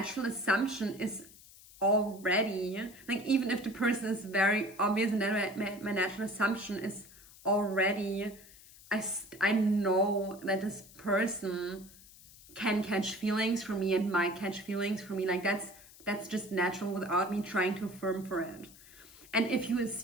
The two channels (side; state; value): left; noise; hiss, 21 dB below the sound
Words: assumption is already, like, even if the person is very obvious, and then my natural assumption is already, I know that this person can catch feelings for me and might catch feelings for me. Like, that's just natural without me trying to affirm for it. And if you